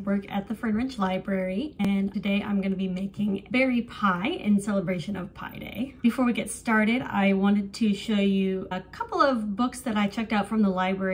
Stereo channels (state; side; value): identical; both; correlation 1.00